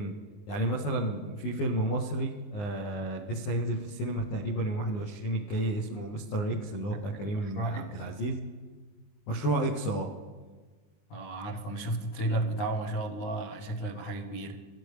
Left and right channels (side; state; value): right; late; 19 ms